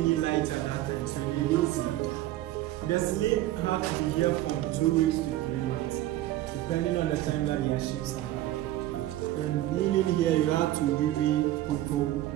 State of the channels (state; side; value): quieter; left; 14.8 dB